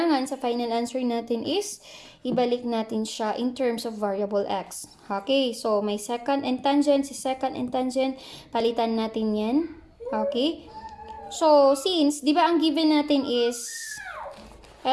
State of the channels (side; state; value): both; identical; correlation 1.00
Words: sa final answer natin is ibalik natin siya in terms of variable x. Okay, so may secant and tangent, si secant and tangent, palitan natin yan. Okay, so since, di ba ang given natin is,